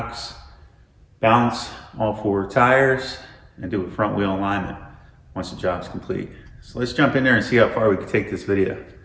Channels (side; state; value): both; identical; correlation 1.00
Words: balance all four tires, and do a front wheel alignment once the job's complete. So let's jump in there and see how far we can take this video.